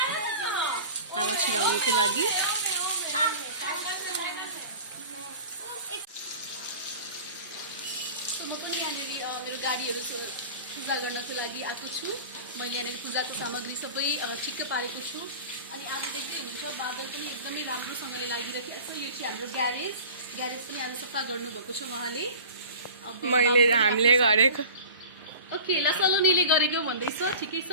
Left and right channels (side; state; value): both; inverted; correlation -0.38